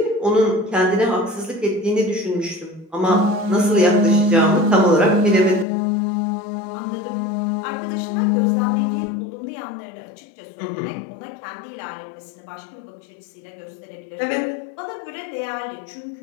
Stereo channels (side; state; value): right; drops out; at 5.7 s